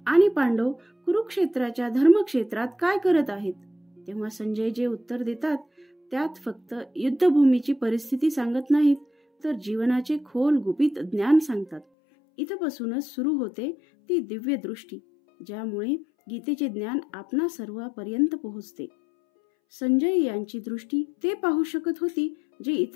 आणि पांडव कुरुक्षेत्राच्या धर्मक्षेत्रात काय करत आहेत. तेव्हा संजय जे उत्तर देतात त्यात फक्त युद्धभूमीची परिस्थिती सांगत नाहीत, तर जीवनाचे खोल गुपित ज्ञान सांगतात. इथपासूनच सुरू होते ती दिव्य दृष्टी, ज्यामुळे गीतेचे ज्ञान आपणा सर्वांपर्यंत पोहोचते. संजय यांची दृष्टी ते पाहू शकत होती जे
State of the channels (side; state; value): right; drops out; at 11.9 s